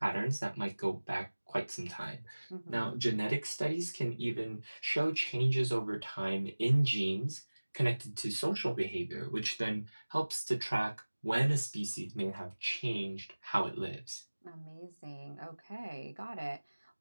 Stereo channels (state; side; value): inverted; both; correlation -1.00